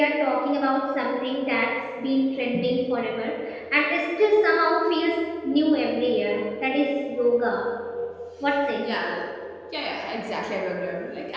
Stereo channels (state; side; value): identical; both; correlation 1.00